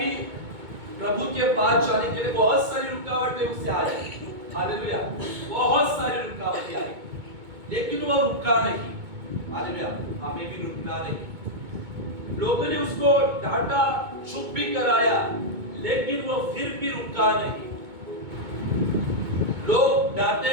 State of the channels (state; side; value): late; left; 2.2 ms